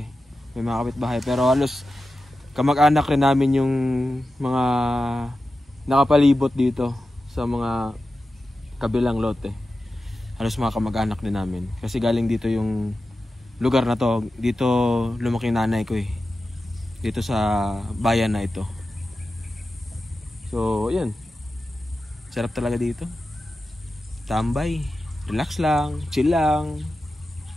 May mga kapitbahay. Pero halos kamag-anak rin namin yung mga nakapalibot dito sa mga kabilang lote. Halos mga kamag-anak din namin. Kasi galing dito yung lugar na to. Dito lumaki nanay ko eh. Dito sa bayan na ito. So, ayan. Sarap talaga dito. Tambay. Relax lang. Chill lang.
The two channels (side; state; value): both; normal; correlation 0.92